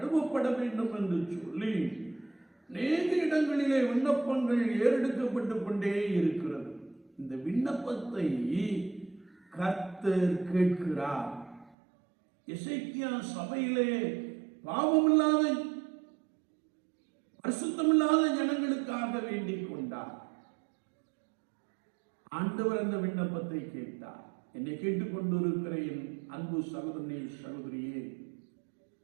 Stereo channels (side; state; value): left; drops out; at 11.8 s